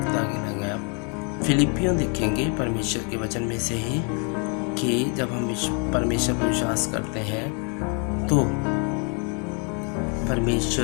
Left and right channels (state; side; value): quieter; right; 37.3 dB